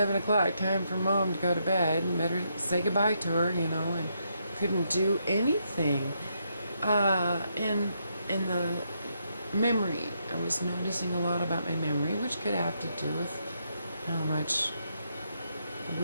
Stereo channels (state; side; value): inverted; both; correlation -0.78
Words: o'clock, time for mom to go to bed, and better say goodbye to her," and couldn't do anything. And the memory, I was noticing a lot about my memory, which could have to do with how much